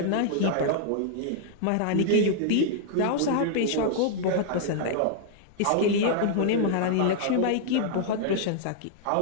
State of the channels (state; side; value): different; both; correlation -0.01